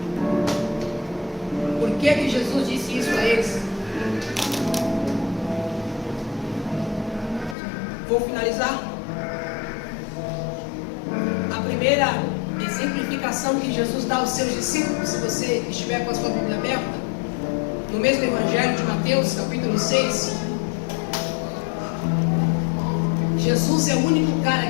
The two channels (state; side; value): drops out; right; at 7.6 s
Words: Por que Jesus disse isso a eles? Vou finalizar. A primeira exemplificação que Jesus dá aos seus discípulos, se você estiver com a sua Bíblia aberta, no mesmo Evangelho de Mateus, capítulo 6, Jesus é o único cara